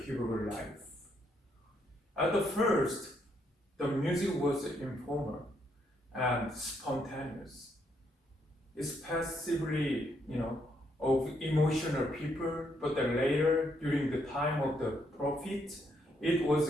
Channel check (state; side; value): normal; both; correlation 0.74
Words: Hebrew life. At the first, the music was informal and spontaneous. It's passively, of emotional people, but then later, during the time of the prophet, it was